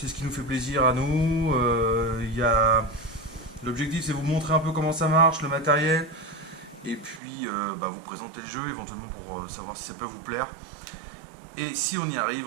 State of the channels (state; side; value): drops out; left; at 7.2 s